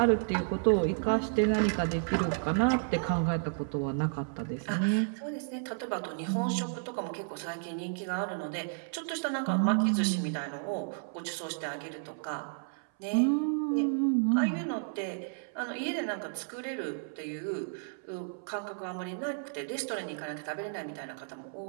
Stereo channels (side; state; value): left; silent; 56 dB below the other